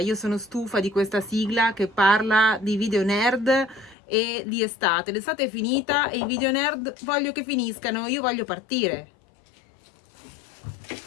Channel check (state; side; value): drops out; right; at 4.0 s